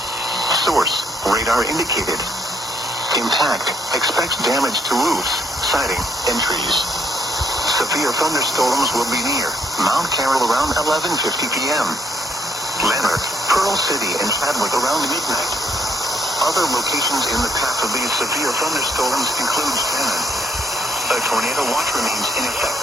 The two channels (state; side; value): normal; both; correlation 0.70